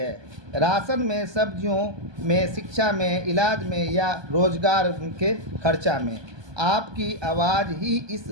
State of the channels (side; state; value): left; late; 1.2 ms